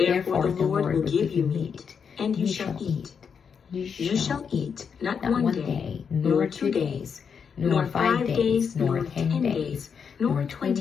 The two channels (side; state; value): right; quieter; 6.6 dB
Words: the Lord will give you meat, and you shall eat. You shall eat not 1 day, nor 2 days, nor 5 days, nor 10 days, nor